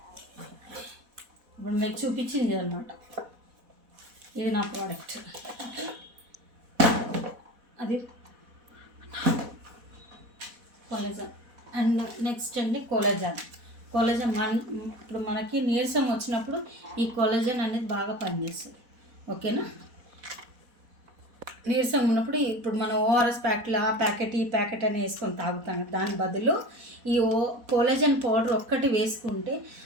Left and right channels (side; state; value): left; late; 4.1 ms